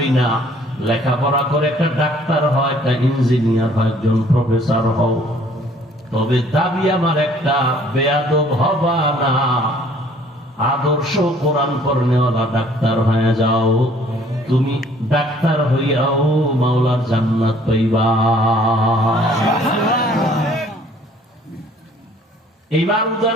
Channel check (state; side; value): normal; both; correlation 0.58